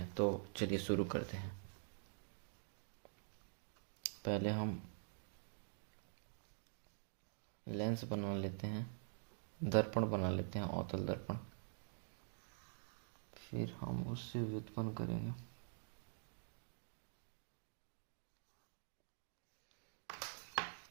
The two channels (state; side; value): silent; left; digital silence